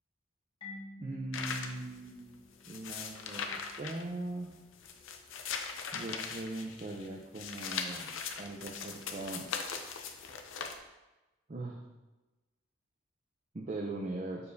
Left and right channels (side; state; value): both; normal; correlation 0.39